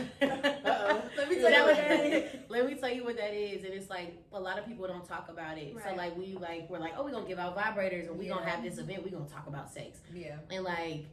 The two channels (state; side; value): identical; both; correlation 1.00